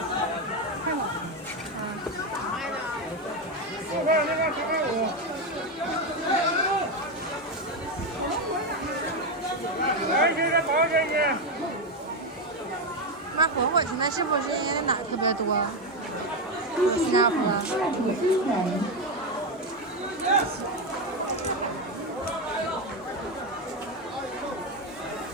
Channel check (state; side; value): normal; both; correlation 0.09